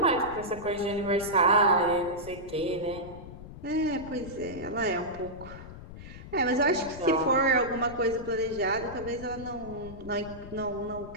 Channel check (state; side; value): noise; left; rumble, 14 dB below the sound